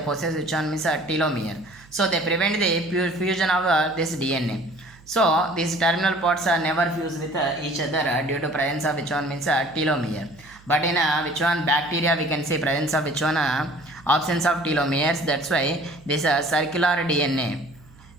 which one means telomere. So they prevent the fusion of this DNA. So these terminal pods never fuse with each other due to presence of which one means telomere. But in which one bacteria we can see presence of which one absence of telomeres. That's why this circular DNA.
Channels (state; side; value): noise; right; hum, 25 dB below the sound